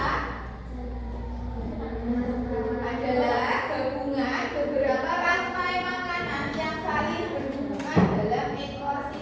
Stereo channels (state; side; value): identical; both; correlation 1.00